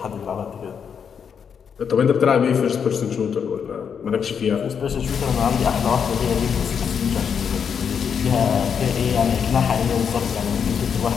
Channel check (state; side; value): quieter; right; 7.1 dB